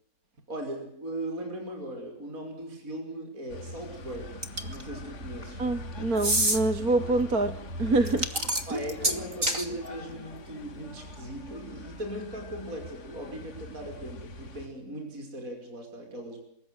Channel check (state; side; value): late; left; 3.9 ms